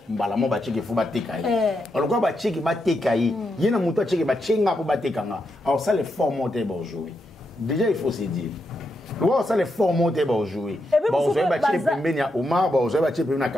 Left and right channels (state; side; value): normal; both; correlation 0.83